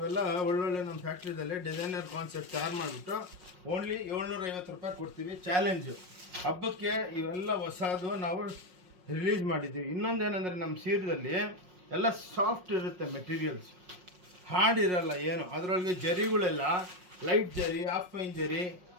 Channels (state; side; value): late; left; 5.5 ms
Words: ಒಳ್ಳೊಳ್ಳೆ ನಮ್ಮ ಫ್ಯಾಕ್ಟ್ರಿದಲ್ಲಿ ಡಿಸೈನರ್ ಕಾನ್ಸೆಪ್ಟ್ ತಯಾರು ಮಾಡಿಬಿಟ್ಟು ಓನ್ಲಿ 750 ರೂಪಾಯಿ ಕೊಡ್ತೀವಿ. ಚಾಲೆಂಜು ಹಬ್ಬಕ್ಕೆ ಇವೆಲ್ಲ ಹೊಸದು ನಾವು ರಿಲೀಸ್ ಮಾಡಿದ್ದೀವಿ. ಇನ್ನೊಂದೇನೆಂದರೆ ನಮ್ಮ ಸೀರೆದಲ್ಲಿ ಎಲ್ಲ ಸಾಫ್ಟ್ ಇರುತ್ತೆ ಮೆಟೀರಿಯಲ್ಸ್. ಹಾಡಿರಲ್ಲ ಏನು, ಅದರೊಳಗೆ ಜರಿಗಳೆಲ್ಲ ಲೈಟ್ ಜರಿ, ಹಾಫ್ ಫೈನ್ ಜರಿ,